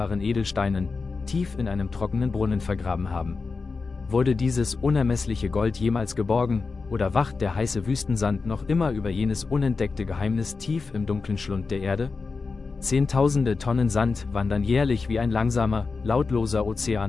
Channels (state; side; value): quieter; right; 4.4 dB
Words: Edelsteinen, tief in einem trockenen Brunnen vergraben haben. Wurde dieses unermessliche Gold jemals geborgen, oder wacht der heiße Wüstensand noch immer über jenes unentdeckte Geheimnis tief im dunklen Schlund der Erde? Zehntausende Tonnen Sand wandern jährlich wie ein langsamer, lautloser